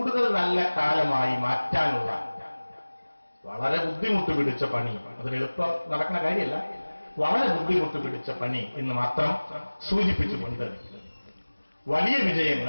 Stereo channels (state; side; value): inverted; both; correlation -1.00